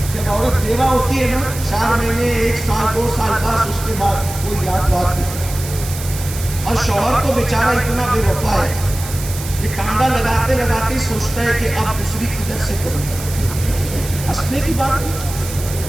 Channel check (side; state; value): right; noise; hiss, 11 dB below the sound